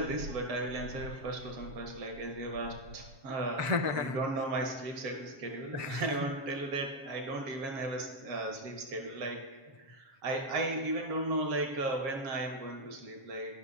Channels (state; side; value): late; left; 7.4 ms